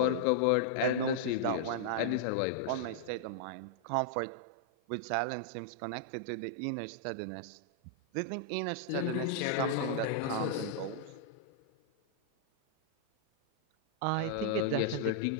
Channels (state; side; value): different; both; correlation -0.01